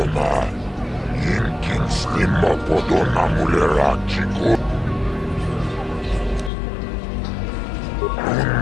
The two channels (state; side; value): drops out; right; at 6.5 s